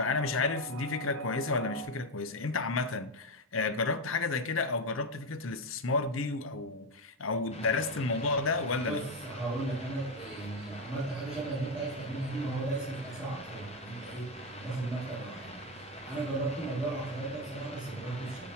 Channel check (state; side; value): normal; both; correlation 0.11